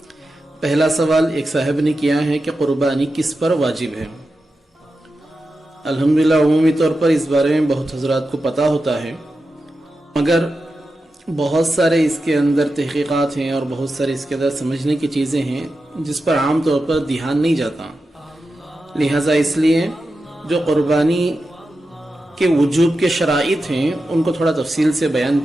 پہلا سوال ایک صاحب نے کیا ہے کہ قربانی کس پر واجب ہے؟ الحمدللہ عمومی طور پر اس بارے میں بہت حضرات کو پتہ ہوتا ہے، مگر بہت سارے اس کے اندر تحقیقات ہیں اور بہت سارے اس کے اندر سمجھنے کی چیزیں ہیں جس پر عام طور پر دھیان نہیں جاتا۔ لہٰذا اس لیے جو قربانی کے وجوب کے شرائط ہیں ان کو تھوڑا تفصیل سے بیان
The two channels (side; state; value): both; normal; correlation 0.91